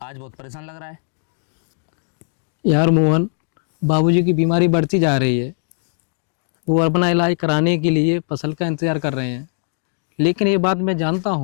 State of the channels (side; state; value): right; silent; 59 dB below the other